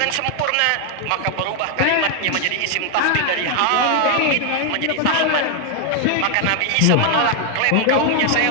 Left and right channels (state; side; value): different; both; correlation 0.00